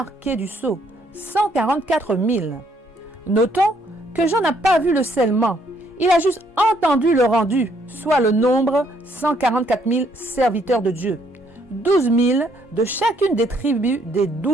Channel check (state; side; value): normal; both; correlation 0.68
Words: du sceau, 144 000. Notons que Jean n'a pas vu le scellement Il a juste entendu le rendu, soit le nombre 144 000 serviteurs de Dieu, 12 000 de chacune des tribus des